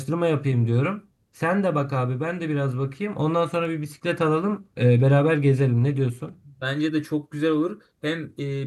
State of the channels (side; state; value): both; identical; correlation 1.00